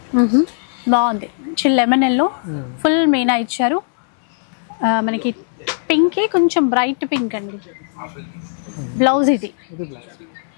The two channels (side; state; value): right; silent; 67 dB below the other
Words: బాగుంది. మంచి లెమన్ ఎల్లో ఫుల్ మీనా ఇచ్చారు. మనకి పింక్ కొంచెం బ్రైట్ పింక్ అండి. బ్లౌజ్ ఇది బ్లౌజ్.